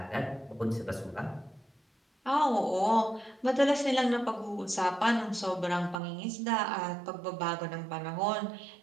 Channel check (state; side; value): drops out; left; at 6.0 s